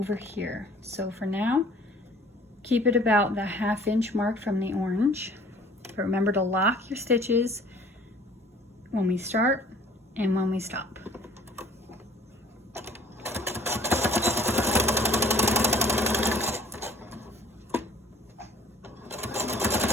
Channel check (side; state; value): both; normal; correlation 0.51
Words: here. So for now, keep it about the 1/2 inch mark from the orange. But remember to lock your stitches when we start and when we stop.